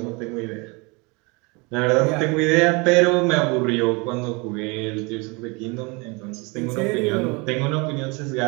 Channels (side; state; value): left; quieter; 28.2 dB